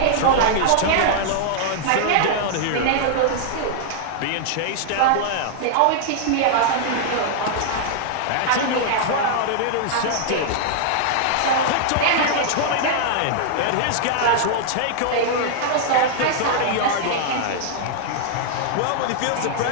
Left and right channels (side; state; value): both; different; correlation -0.01